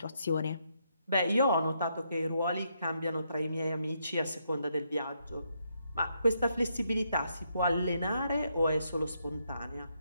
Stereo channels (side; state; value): both; inverted; correlation -0.77